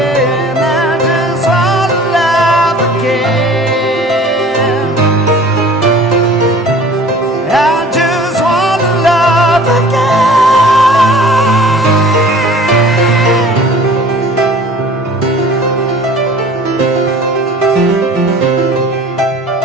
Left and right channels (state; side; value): normal; both; correlation 0.47